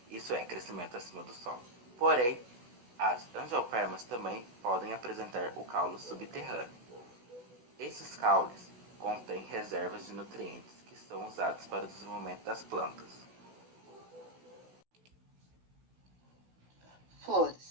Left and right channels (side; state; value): left; late; 16 ms